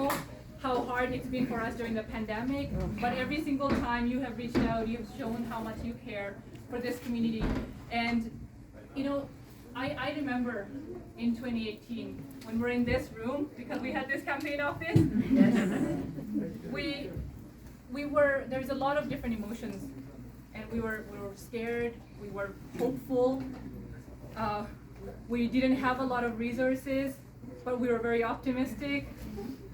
how hard it's been for us during the pandemic, but every single time you have reached out, you've shown how much you care for this community. And you know, I remember in 2018 when we're in this room, because we had this campaign office. There's a lot of different emotions, and we were scared, we were hopeful, we didn't have a lot of resources, but we were very optimistic.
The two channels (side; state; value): both; identical; correlation 1.00